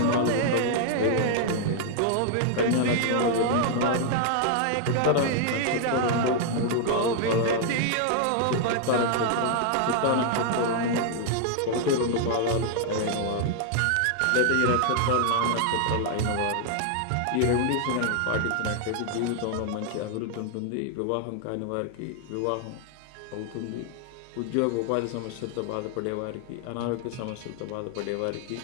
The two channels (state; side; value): different; both; correlation 0.00